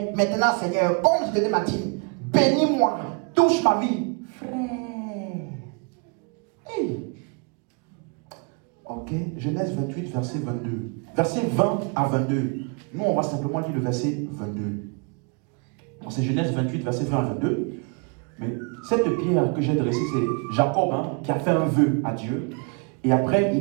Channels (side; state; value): left; quieter; 35.0 dB